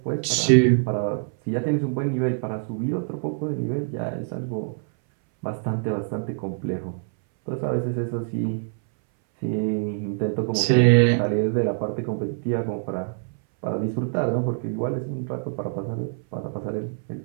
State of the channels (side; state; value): left; silent; 61 dB below the other